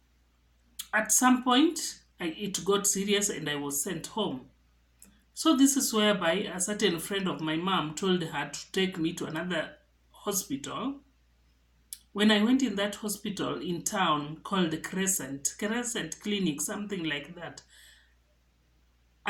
At some point, it got serious and I was sent home. So this is whereby a certain friend of my mom told her to take me to another hospital. When I went in that hospital in town called Crescent Clinic, something like that,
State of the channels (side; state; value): both; identical; correlation 1.00